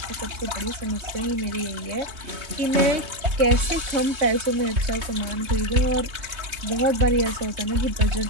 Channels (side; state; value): left; late; 3.2 ms